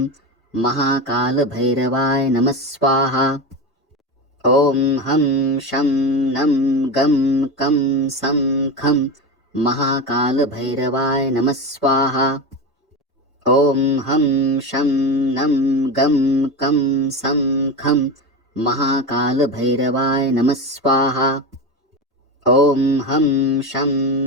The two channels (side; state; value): both; normal; correlation 0.21